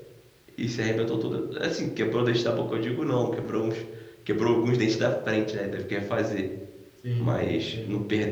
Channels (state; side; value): identical; both; correlation 1.00